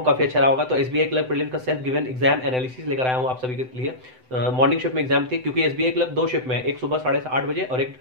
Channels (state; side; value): late; left; 7.9 ms